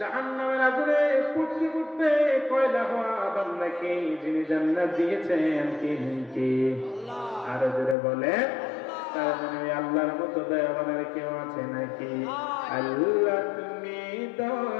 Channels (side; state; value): right; drops out; at 8.0 s